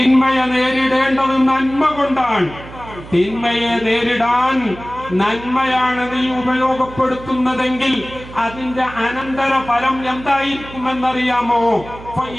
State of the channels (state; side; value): noise; right; hum, 16 dB below the sound